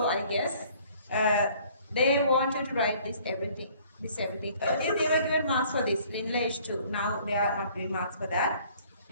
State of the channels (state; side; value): inverted; both; correlation -0.56